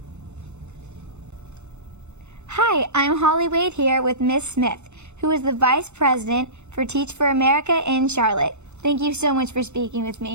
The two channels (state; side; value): late; left; 0.82 ms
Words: Hi, I'm Holly Wade here with Miss Smith, who is the Vice President for Teach for America in Charlotte. Thank you so much for speaking with